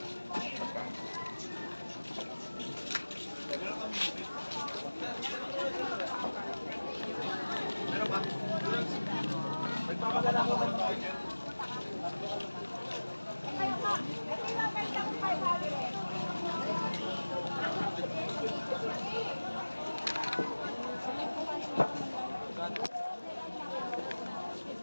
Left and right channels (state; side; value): inverted; both; correlation -1.00